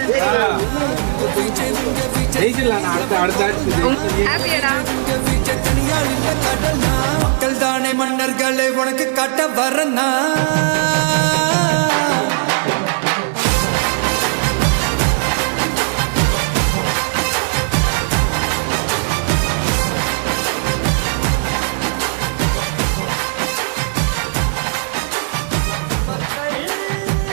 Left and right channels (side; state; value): left; silent; digital silence